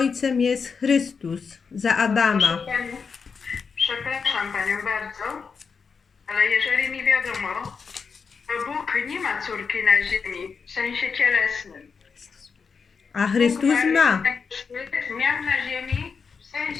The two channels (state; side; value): quieter; right; 5.5 dB